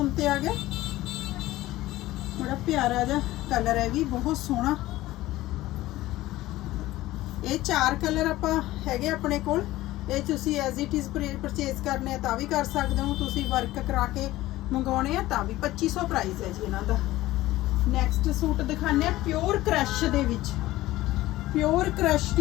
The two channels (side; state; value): right; quieter; 16.7 dB